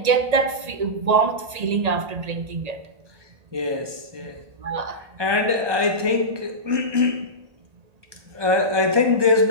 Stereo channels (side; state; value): left; late; 1.8 ms